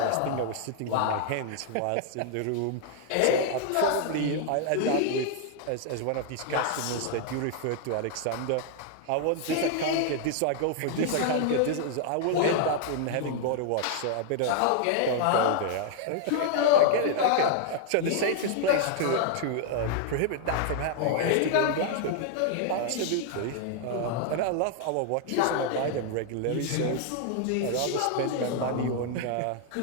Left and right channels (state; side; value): different; both; correlation 0.00